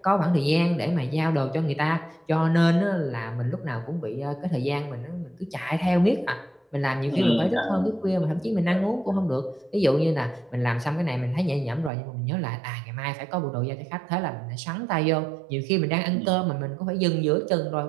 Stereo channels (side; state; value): left; drops out; at 11.9 s